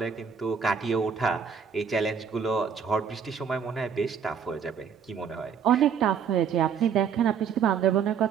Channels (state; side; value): quieter; left; 6.9 dB